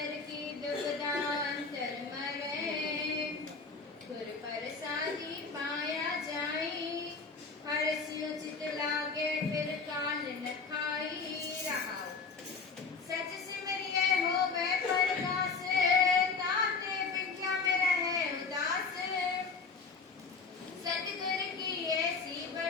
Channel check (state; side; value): quieter; right; 4.7 dB